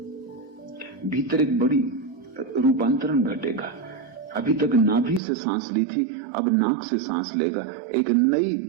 भीतर एक बड़ी रूपांतरण घटेगा। अभी तक नाभि से सांस ली थी, अब नाक से सांस लेगा। एक नई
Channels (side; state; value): left; drops out; at 5.2 s